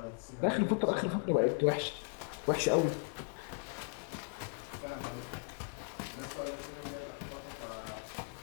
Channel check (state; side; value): silent; right; 53 dB below the other